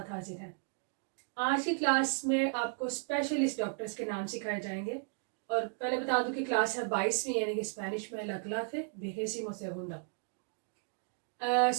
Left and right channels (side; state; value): left; silent; 55 dB below the other